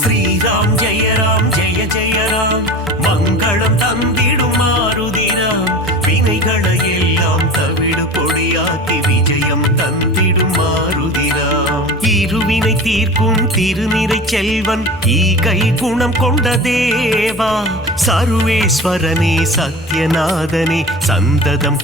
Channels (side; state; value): both; normal; correlation 0.34